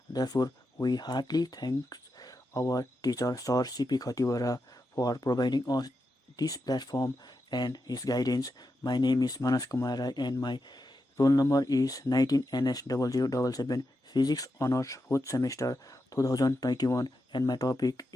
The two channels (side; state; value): both; normal; correlation 0.87